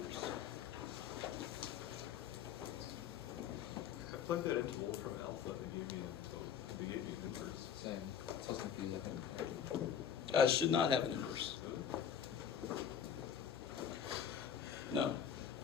I plugged that into Wolfram Alpha and they gave me an inverse. Same. It's so confusing. It should not have an inverse. No.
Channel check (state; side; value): quieter; right; 8.3 dB